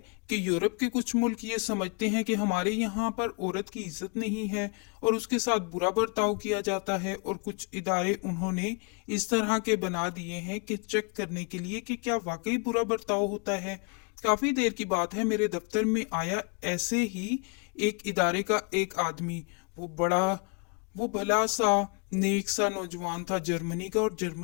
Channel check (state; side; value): quieter; right; 34.5 dB